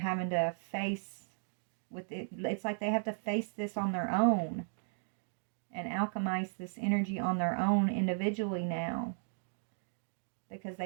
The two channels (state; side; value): silent; left; digital silence